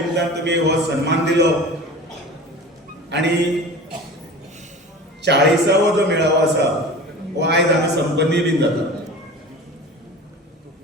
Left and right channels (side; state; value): both; normal; correlation 0.36